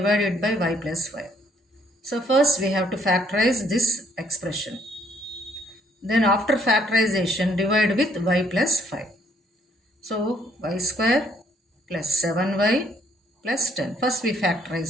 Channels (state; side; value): normal; both; correlation 0.65